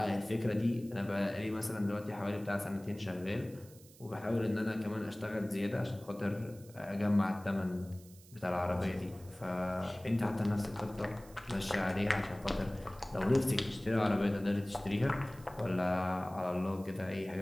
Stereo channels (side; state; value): right; noise; hiss, 23 dB below the sound